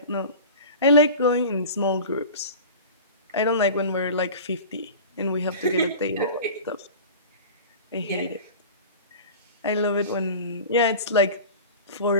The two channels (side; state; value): both; inverted; correlation -0.36